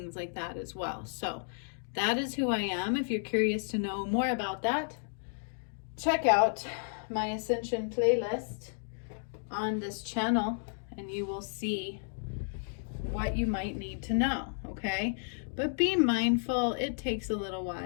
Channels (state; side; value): silent; right; digital silence